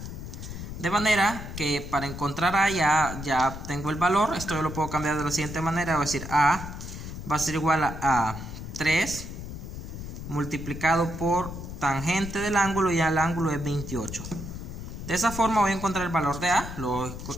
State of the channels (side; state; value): left; noise; rumble, 9 dB below the sound